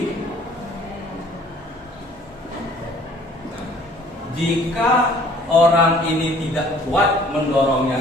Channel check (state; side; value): normal; both; correlation 0.55